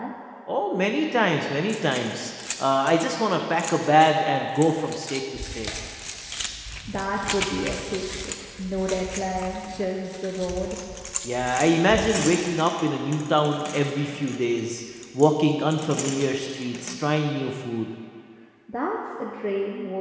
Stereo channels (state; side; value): identical; both; correlation 1.00